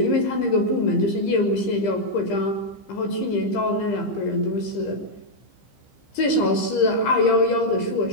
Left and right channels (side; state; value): right; late; 15 ms